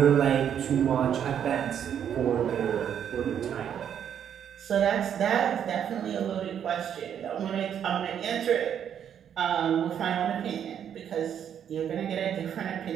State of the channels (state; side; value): quieter; left; 8.9 dB